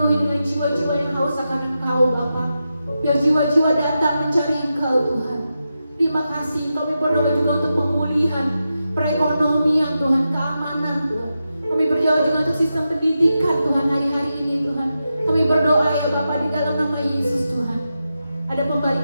dengan jiwa-jiwa yang haus akan Engkau Bapa. Biar jiwa-jiwa datang mencari Engkau Tuhan. Terima kasih, kami berdoa juga untuk pemulihan perekonomian Tuhan, keamanan Tuhan. Kami berdoa juga untuk sistem pendidikan Tuhan hari-hari ini Tuhan. Kami berdoa ya Bapa di dalam nama Yesus Tuhan. Ada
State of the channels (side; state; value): both; inverted; correlation -0.89